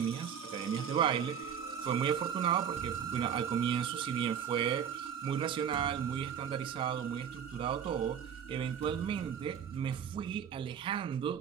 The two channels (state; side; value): quieter; left; 8.2 dB